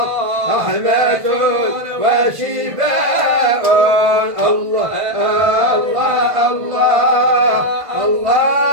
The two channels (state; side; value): late; left; 1.5 ms